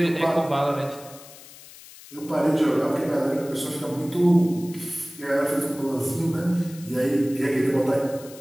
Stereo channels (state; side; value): noise; left; hiss, 19 dB below the sound